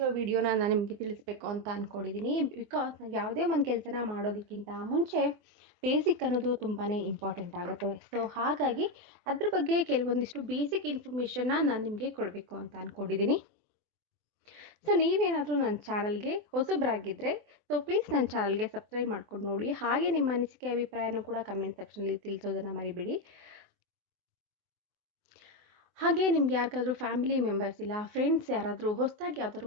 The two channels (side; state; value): left; late; 24 ms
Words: ವಿಡಿಯೋನ ನಾನು ನಿಮಗೆ ತಿಳಿಸ್ಬೇಕು ಅಂತ ಅಂದ್ಕೊಂಡಿದ್ದೀನಿ. ಬಿಕಾಸ್ ನಾವು ಯಾವುದೇ ಒಂದು ಕೆಲಸನ ಮಾಡೋದಕ್ಕಿಂತ ಮುಂಚೆ ಬೇಸಿಕ್ ಅನ್ನೋದು ತುಂಬಾ ಇಂಪಾರ್ಟೆಂಟ್ ಆಗುತ್ತೆ. ಹಾಗಾಗಿ ಅದ್ರ ಬಗ್ಗೆ ಕೆಲವೊಂದಿಷ್ಟು ಬೇಸಿಕ್ ಇನ್ಫಾರ್ಮೇಷನ್ನ ನಾನು ನಿಮಗೆ ಕೊಡಬೇಕು ಅಂತ ಅಂದ್ಕೊಂಡಿದ್ದೀನಿ. ನೀವೇನಾದರೂ ನನ್ನ ಚಾನಲ್ಗೆ ಹೊಸಬರಾಗಿದ್ದರೆ ಪ್ಲೀಸ್ ನನ್ನ ಚಾನಲ್ಗೆ ಸಬ್ಸ್ಕ್ರೈಬ್ ಮಾಡ್ಕೊಂಡು ನೋಡಿ. ಹಾಗೆ ನಿಮ್ಮ ಅನಿಸಿಕೆ ಅಭಿಪ್ರಾಯನೂ ಕೂಡ ಕಮೆಂಟ್ ಸೆಕ್ಷನಲ್ಲಿ ತಿಳಿಸೋದನ್ನು ಮರಿಬೇಡಿ. ಹಾಗೆ ನಿಮ್ಗೆ ಯಾರಿಗಾದ್ರೂ ಫ್ಯಾಮಿಲಿ ಮೆಂಬರ್ಸ್ ಇಲ್ಲ ಫ್ರೆಂಡ್ಸ್ ಯಾರಾದರೂ ಹೊಸದಾಗಿ ಯಾವ್ದಾದ್ರು